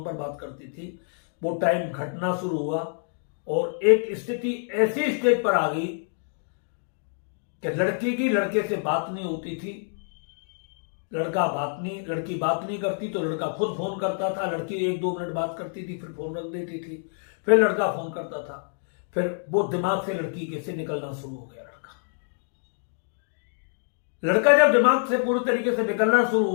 पर बात करती थी, वो टाइम घटना शुरू हुआ और एक स्थिति ऐसी स्टेज पर आ गई कि लड़की की लड़के से बात नहीं होती थी, लड़की बात नहीं करती तो लड़का खुद फोन करता था। लड़की 1-2 मिनट बात करती थी, फिर फोन रख देती थी, फिर लड़का फोन करता था, फिर वो दिमाग से लड़की कैसे निकलना शुरू हो गया। लड़का जब दिमाग से पूरी तरीके से निकलना शुरू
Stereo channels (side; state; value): right; silent; digital silence